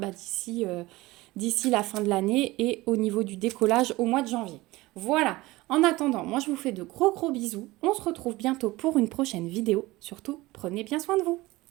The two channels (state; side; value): quieter; left; 19.8 dB